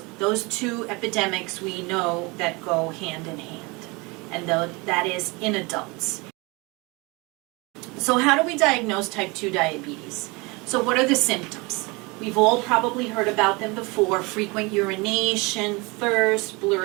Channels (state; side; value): quieter; left; 26.5 dB